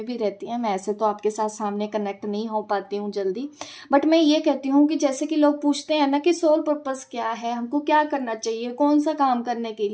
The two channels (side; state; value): both; identical; correlation 1.00